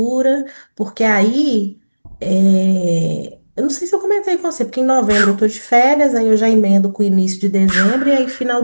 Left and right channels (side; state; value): both; inverted; correlation -1.00